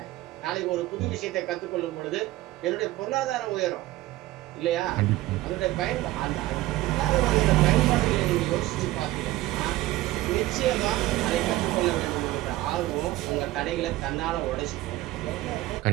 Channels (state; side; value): quieter; left; 17.0 dB